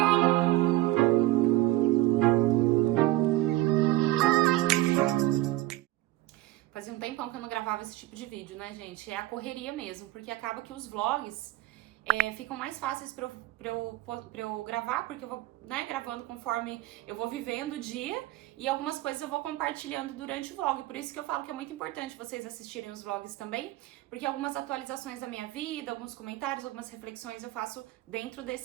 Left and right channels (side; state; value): left; quieter; 18.0 dB